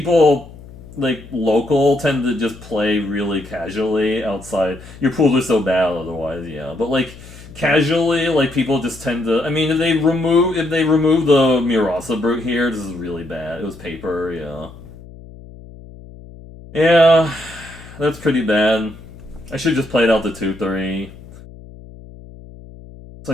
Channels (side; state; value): left; noise; hum, 18 dB below the sound